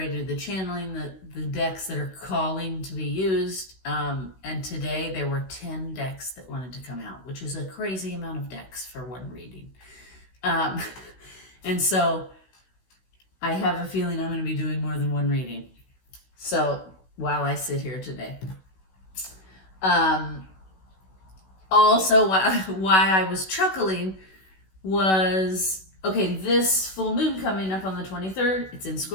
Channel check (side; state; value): right; late; 16 ms